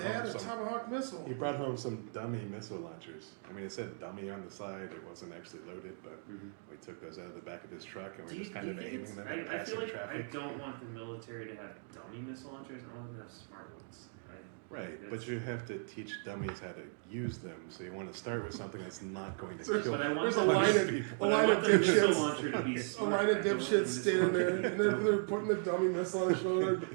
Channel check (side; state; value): left; silent; 53 dB below the other